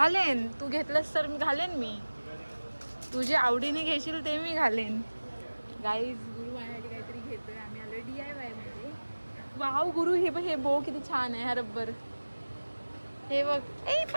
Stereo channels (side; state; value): both; inverted; correlation -1.00